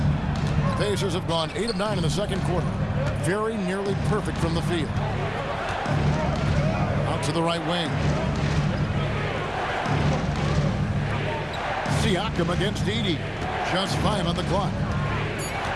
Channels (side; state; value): both; identical; correlation 1.00